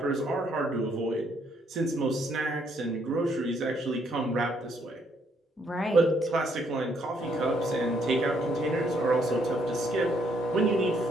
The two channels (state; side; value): normal; both; correlation 0.70